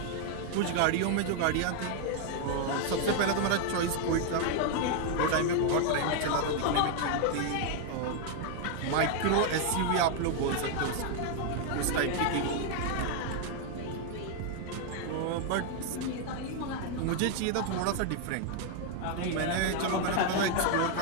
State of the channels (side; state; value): both; different; correlation 0.00